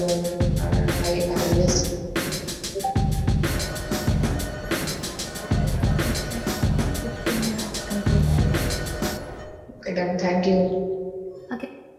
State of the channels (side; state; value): both; identical; correlation 1.00